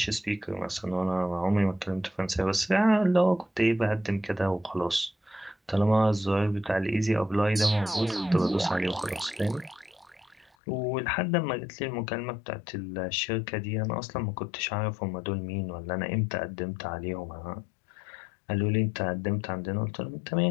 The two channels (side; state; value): right; drops out; at 10.5 s